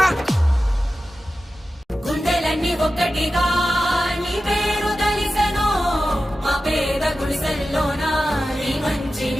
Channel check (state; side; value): normal; both; correlation 0.93